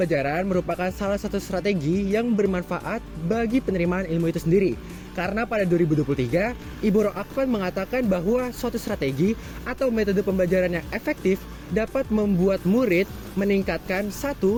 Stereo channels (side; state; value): both; identical; correlation 1.00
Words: merupakan salah satu strategi yang bermanfaat bagi penerimaan ilmu itu sendiri. Karena pada 2023, Ibu Roakvan mengatakan bahwa suatu strategi atau metode pembelajaran yang efektif dapat membuat murid meningkatkan 1.